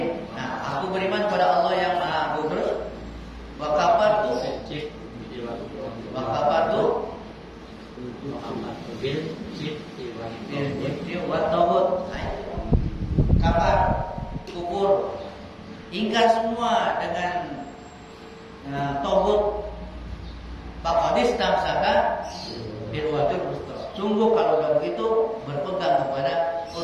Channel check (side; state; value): both; identical; correlation 1.00